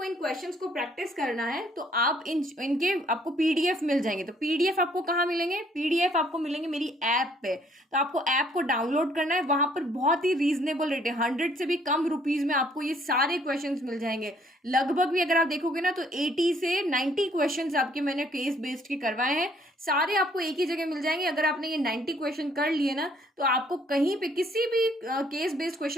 इन क्वेश्चंस को प्रैक्टिस करना है तो आप इनके आपको पीडीएफ मिल जाएंगे। तो पीडीएफ आपको कहाँ मिलेंगे, पीडीएफ आपको मिलेंगे मेरी ऐप पे। तो आपको ऐप को डाउनलोड करना है, वहां पर बहुत ही रीजनेबल रेट है, 100 से भी कम रुपीज में आपको ये सारे क्वेश्चंस मिल जाएंगे। लगभग भी अगर आप देखोगे ना तो 80 से 90 क्वेश्चंस आपके मैंने केस बेस्ड के करवाए हैं, सारे आपको एक ही जगह मिल जाएंगे। अगर आपने ये 90 क्वेश्चन कर लिए ना तो आपको कहीं पे किसी भी केस बेस्ड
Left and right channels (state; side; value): normal; both; correlation 0.64